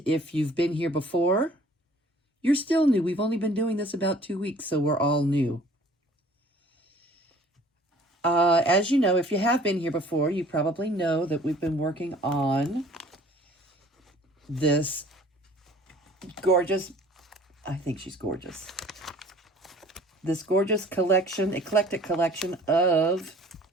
if you've been here before, you're still new. We've only been doing this about 2 weeks, so we're all new. As you know, if you have been here before, you probably know that we've been working on this gorgeous, I think she's gorgeous, this gorgeous collection, eclectic collection of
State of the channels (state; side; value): normal; both; correlation 0.52